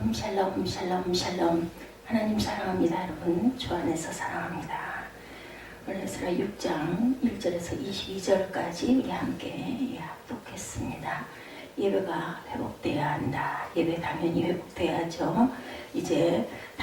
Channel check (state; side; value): identical; both; correlation 1.00